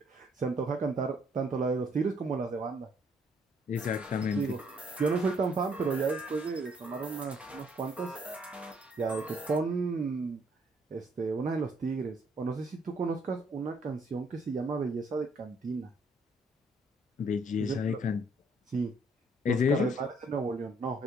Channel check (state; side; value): normal; both; correlation 0.66